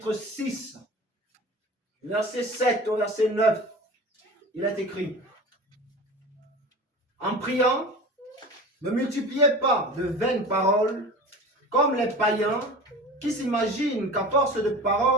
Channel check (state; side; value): normal; both; correlation 0.35